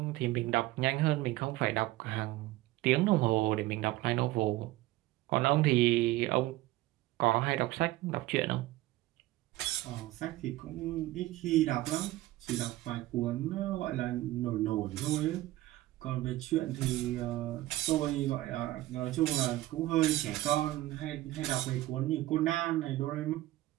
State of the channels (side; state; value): left; quieter; 17.0 dB